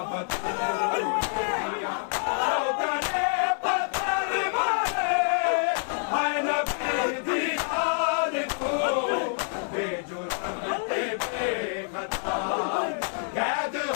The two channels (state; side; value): silent; right; 60 dB below the other